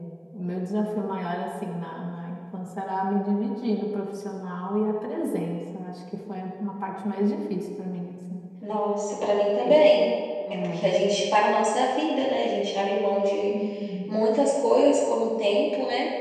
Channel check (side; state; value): both; identical; correlation 1.00